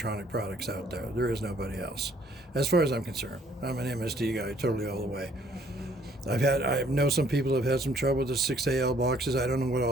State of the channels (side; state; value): both; normal; correlation 0.62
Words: products out there. There is nobody else. As far as I'm concerned, I'm an MSD guy, totally all the way. I know some people have had some trouble with the 6AL boxes. I don't know what